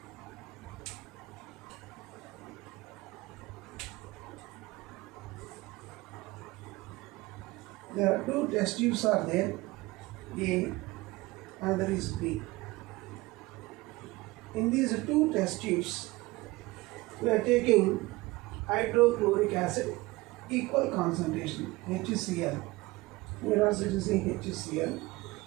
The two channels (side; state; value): left; quieter; 21.1 dB